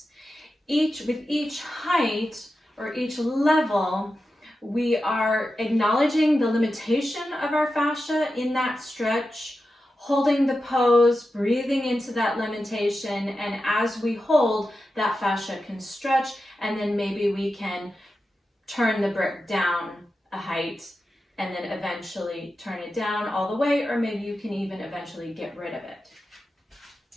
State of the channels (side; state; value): both; normal; correlation 0.91